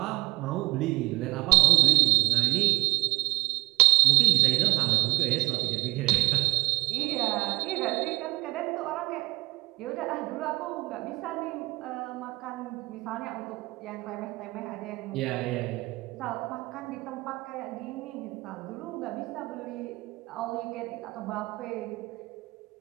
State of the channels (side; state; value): left; quieter; 21.3 dB